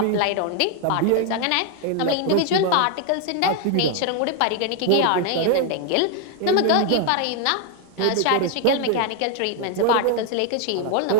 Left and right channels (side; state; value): both; different; correlation 0.00